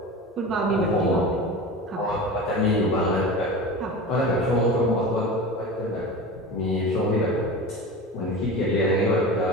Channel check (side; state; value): both; normal; correlation 0.31